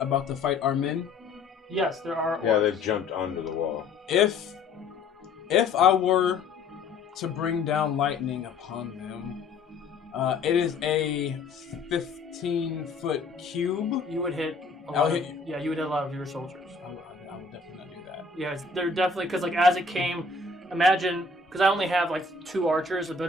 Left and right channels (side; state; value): right; quieter; 4.0 dB